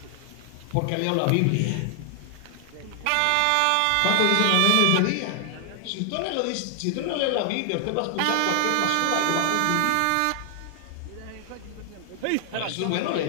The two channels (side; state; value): both; different; correlation 0.00